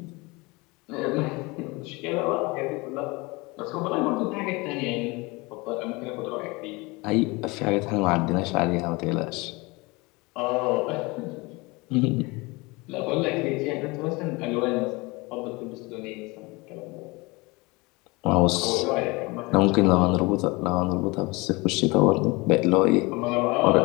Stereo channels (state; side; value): quieter; right; 24.8 dB